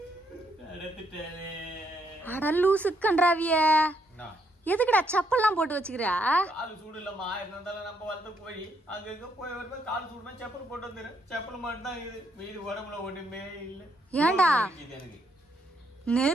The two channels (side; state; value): both; normal; correlation 0.74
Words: நடந்துட்டாலே. அட லூசு கன்றாவிய, எதுக்குடா செப்பல்லாம் போட்டு வச்சுக்கிறா? காலு சூடு இல்லம்மா. இருந்தாலும் நம்ம வளர்த்த கோழி அங்க போய் வருமா காலு சூடுமா செப்பல் போட்டு வந்துரு. செப்பல் மட்டும் தான் இது, மீது உடம்புல ஒண்ணுமே இல்ல. ஏண்டா